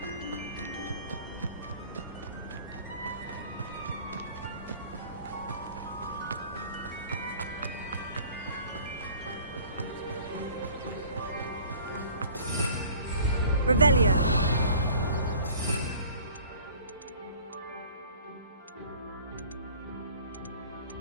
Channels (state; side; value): inverted; both; correlation -0.49